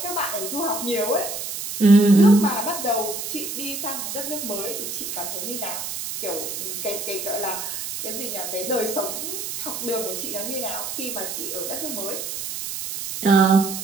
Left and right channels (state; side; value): noise; right; hiss, 6 dB below the sound